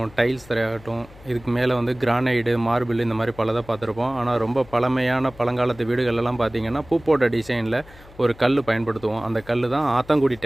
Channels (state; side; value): noise; left; hum, 22 dB below the sound